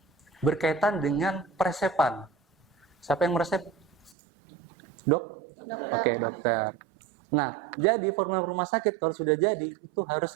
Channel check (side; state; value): left; drops out; at 4.2 s